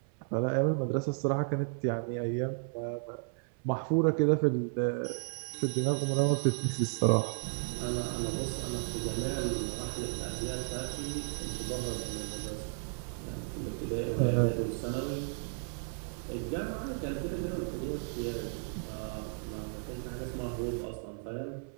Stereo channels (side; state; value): left; silent; 55 dB below the other